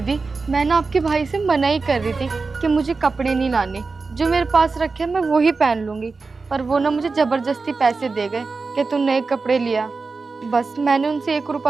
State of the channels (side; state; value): left; quieter; 4.2 dB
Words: मैं ना आपके भाई से मना ही कर रही थी कि मुझे कपड़े नहीं लाने, जो मेरे पास रखे मैं वही पहन लूंगी। पर वो ना मुझे जबरदस्ती पैसे दे गए कि तू नए कपड़े लिया। बस मैंने उनसे 1